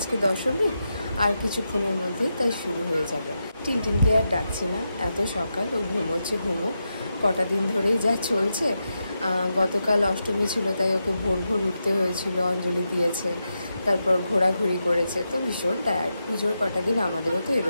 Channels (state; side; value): inverted; both; correlation -0.87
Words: দশমী, আর কিছুক্ষণের মধ্যেই তাই শুরু হয়ে যাবে। টিনটিনকে আর ডাকছি না, এত সকাল, ও ঘুমোচ্ছে, কটা দিন ধরেই যা চলছে। গতকাল অষ্টমী ছিল, তাই ওকে ভোর ভোর উঠতে হয়েছিল, অঞ্জলি দিয়েছে, তারপর ঘোরাঘুরি করেছে, তো ভীষণ টায়ার্ড। পুজোর কটা দিন আমাদেরও তো